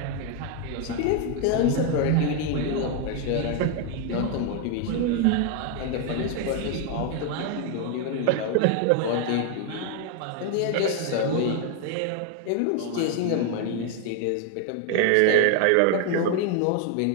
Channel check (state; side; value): different; both; correlation 0.01